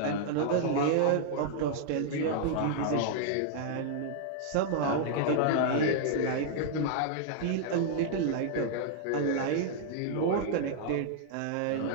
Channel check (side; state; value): both; different; correlation -0.01